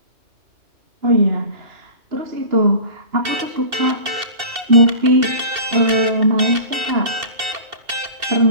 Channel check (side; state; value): left; late; 2.7 ms